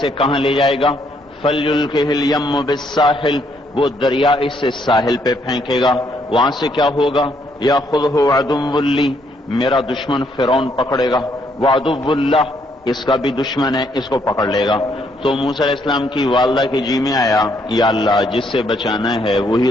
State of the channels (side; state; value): both; normal; correlation 0.71